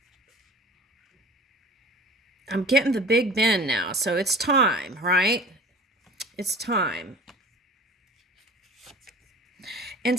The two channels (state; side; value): normal; both; correlation 0.43